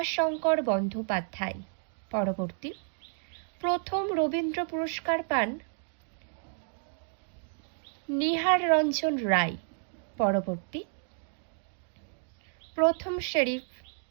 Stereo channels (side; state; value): left; silent; digital silence